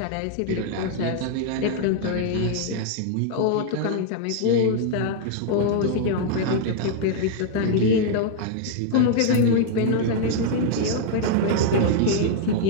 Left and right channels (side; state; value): both; different; correlation -0.01